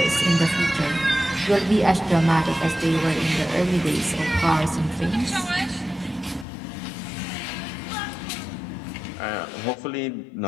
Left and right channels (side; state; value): right; drops out; at 6.5 s